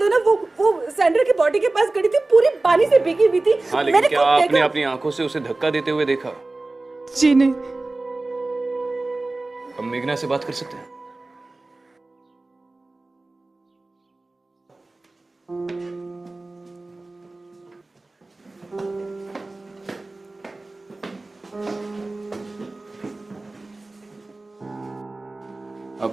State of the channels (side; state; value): left; quieter; 3.1 dB